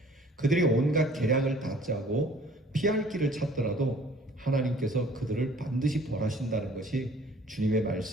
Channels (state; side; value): normal; both; correlation 0.54